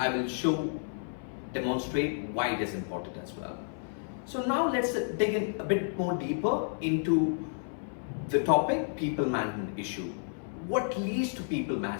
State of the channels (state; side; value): silent; right; 55 dB below the other